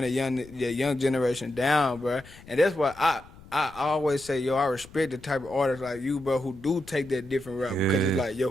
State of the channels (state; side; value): noise; left; rumble, 21 dB below the sound